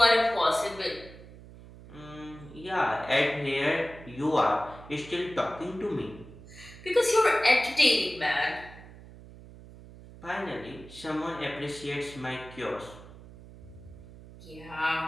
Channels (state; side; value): noise; right; hum, 18 dB below the sound